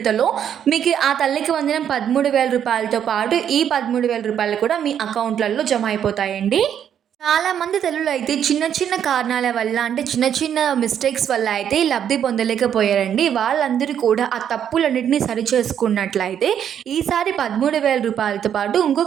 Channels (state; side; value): quieter; left; 9.1 dB